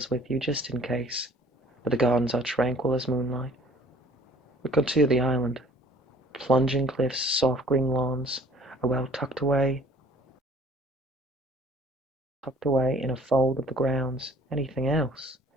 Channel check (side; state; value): both; normal; correlation 0.53